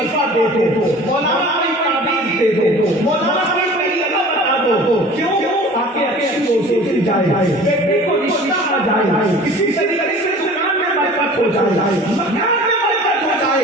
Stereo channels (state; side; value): normal; both; correlation 0.43